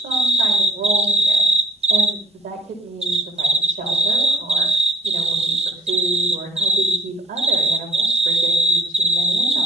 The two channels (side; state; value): both; normal; correlation 0.49